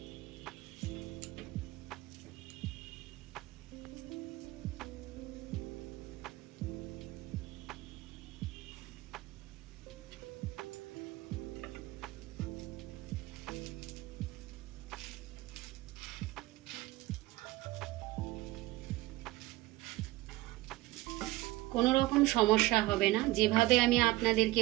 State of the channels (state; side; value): quieter; left; 18.7 dB